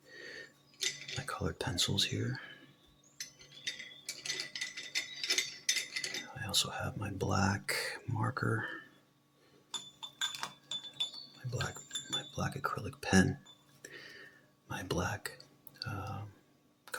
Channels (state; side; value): identical; both; correlation 1.00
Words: colored pencils here. I also have my black marker, my black acrylic pen, my black